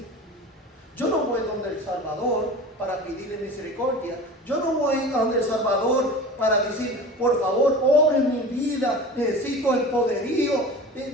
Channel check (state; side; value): normal; both; correlation 0.35